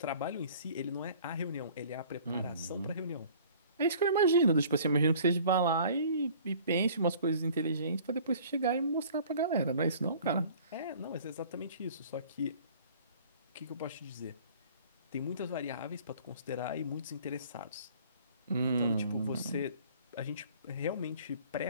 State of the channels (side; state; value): both; inverted; correlation -0.50